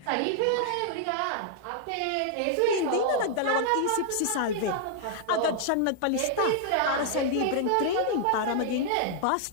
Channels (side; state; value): both; different; correlation -0.01